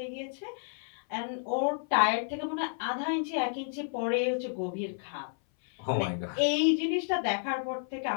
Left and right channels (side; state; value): right; silent; 57 dB below the other